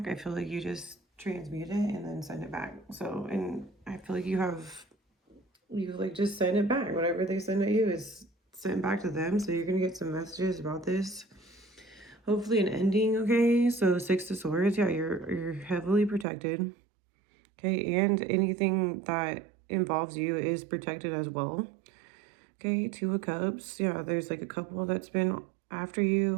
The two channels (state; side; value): drops out; left; at 16.2 s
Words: I feel like you just transmute it and then send it back. So, and I feel like you like just send it back. Whatever they send at you is sent back to them. So you're gonna get some messages about this. Hopefully an ending, okay? So 6 of Swords, yeah, you're heavily protected. Okay, and anything that involves you is protected as well. Okay, 2 of Cups. Yeah, there's like a couple that's been after